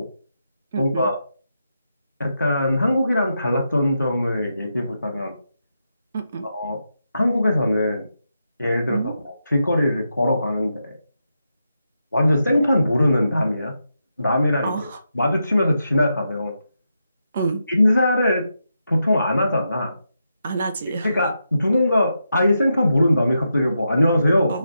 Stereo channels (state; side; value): inverted; both; correlation -0.85